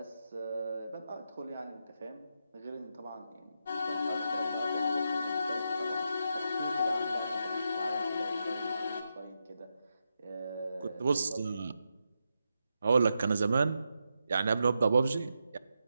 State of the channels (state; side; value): inverted; both; correlation -0.85